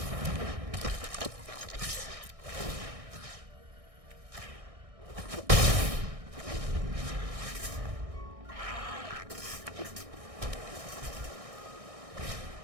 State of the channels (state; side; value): late; left; 1.6 ms